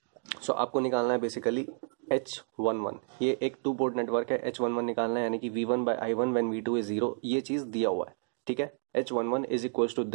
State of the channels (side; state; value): left; silent; digital silence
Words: सो आपको निकालना है बेसिकली H11। ये एक 2 पोर्ट नेटवर्क है, H11 निकालना है, यानी कि V1/I1 व्हेन V2 इज 0, ये चीज़ दिया हुआ है। ठीक है, H11 is equals to